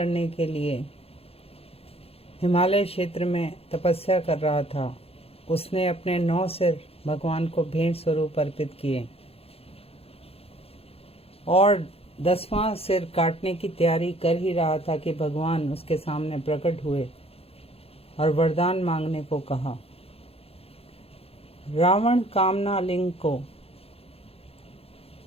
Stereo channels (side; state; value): right; late; 0.28 ms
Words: के लिए हिमालय क्षेत्र में तपस्या कर रहा था। उसने अपने 9 सिर भगवान को भेंट स्वरूप अर्पित किए और 10वां सिर काटने की तैयारी कर ही रहा था कि भगवान उसके सामने प्रकट हुए और वरदान मांगने को कहा। रावण कामना लिंग को,